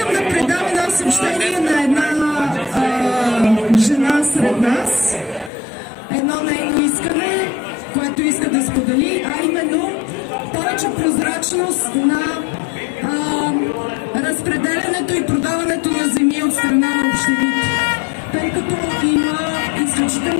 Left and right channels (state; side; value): drops out; right; at 5.5 s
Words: да предам едно съобщение на една жена сред нас. Едно нейно искане, което иска да сподели, а именно повече прозрачност на разпределянето и продаването на земи от страна на общините. Тъй като има